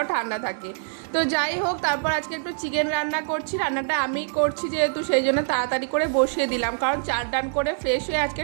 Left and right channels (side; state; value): left; silent; digital silence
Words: ঠান্ডা থাকে। তো যাই হোক, তারপর আজকে একটু চিকেন রান্না করছি। রান্নাটা আমিই করছি যেহেতু, সেই জন্য তাড়াতাড়ি করে বসিয়ে দিলাম, কারণ চার ডান করে ফ্রেশ হয়ে আজকে